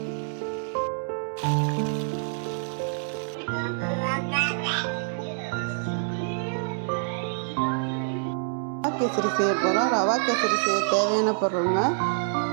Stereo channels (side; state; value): left; silent; 60 dB below the other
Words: செய்ய போகிறோம். ரவா கேசரி செய்ய தேவையான பொருளுங்க,